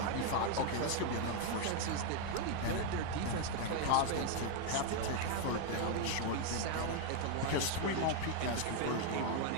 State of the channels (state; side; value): different; both; correlation 0.01